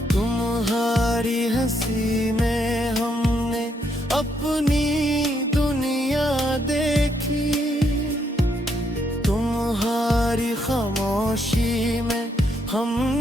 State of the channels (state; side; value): normal; both; correlation 0.75